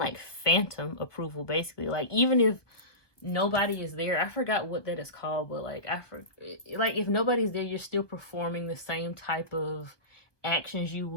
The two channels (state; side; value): late; right; 1.2 ms